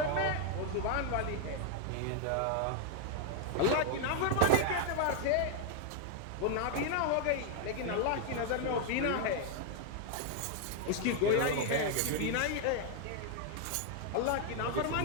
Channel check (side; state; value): both; different; correlation 0.00